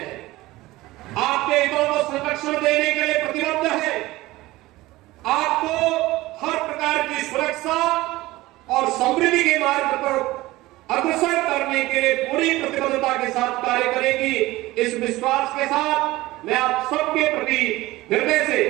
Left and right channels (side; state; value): left; quieter; 18.6 dB